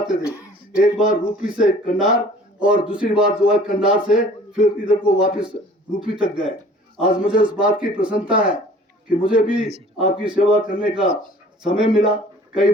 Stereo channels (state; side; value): normal; both; correlation 0.50